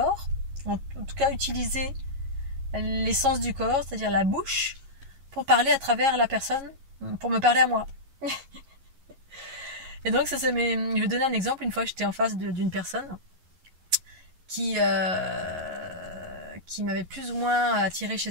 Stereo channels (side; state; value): left; late; 11 ms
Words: en tout cas utiliser l'essence du corps, c'est-à-dire la bouche, pour parler à travers la personne pour me parler à moi. Et donc, je vais donner un exemple. Une fois, j'étais en face d'une personne qui m'avait plus ou moins attiré chez